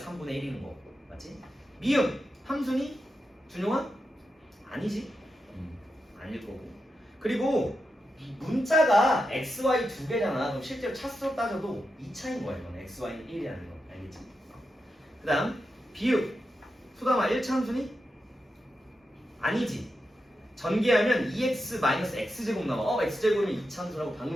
1인 거고. 맞지? 미음, 함수니? 준용아? 아니지? 아닐 거고. 그리고 이 문자가 x, y 두 개잖아. 그럼 실제로 차수로 따져도 2차인 거야. 이거는 x, y는 1이라는 거. 알겠지? 그 다음 비읍, 소담아 1차 함수니? 아니지. 전개하면 2x-x제곱 나와. x제곱이면 2차 함수라고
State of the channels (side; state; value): both; normal; correlation 0.88